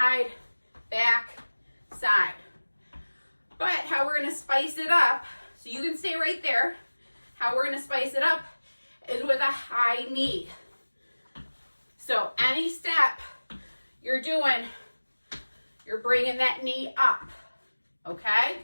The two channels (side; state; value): both; inverted; correlation -1.00